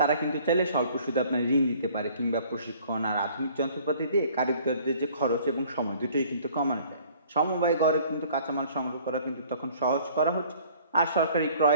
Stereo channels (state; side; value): inverted; both; correlation -0.54